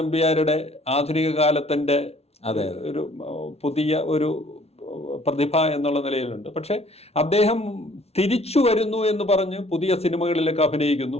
ആധുനിക കാലത്തിൻ്റെ ഒരു പുതിയ ഒരു പ്രതിഭ എന്നുള്ള നിലയിലുണ്ട്. പക്ഷെ അദ്ദേഹം തിരിച്ചു വരുന്നു എന്ന് പറഞ്ഞ് പുതിയ സിനിമകളിലൊക്കെ അഭിനയിക്കുന്നു.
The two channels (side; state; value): right; late; 0.30 ms